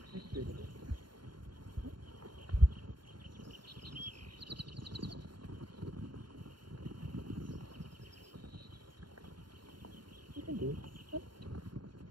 Let's do it again. You can do it.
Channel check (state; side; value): late; left; 0.72 ms